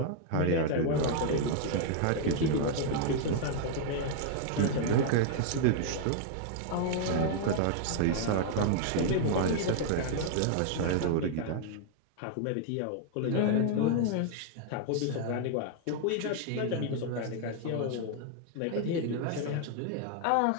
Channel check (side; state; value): both; different; correlation 0.00